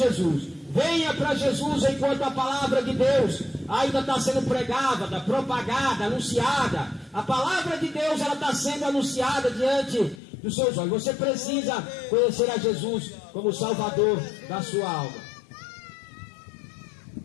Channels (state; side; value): drops out; right; at 10.2 s